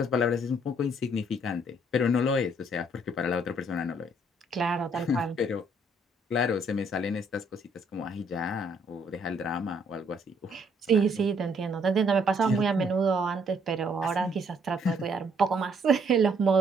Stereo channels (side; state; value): both; normal; correlation 0.67